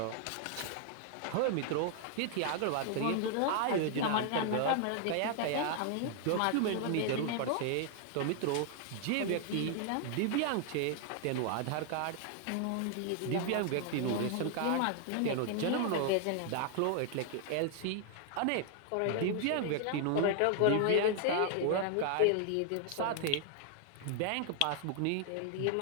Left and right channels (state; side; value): different; both; correlation 0.00